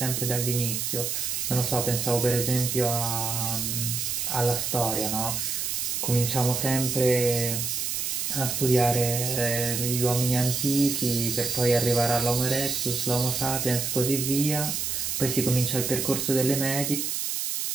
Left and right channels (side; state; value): right; noise; hiss, 1 dB below the sound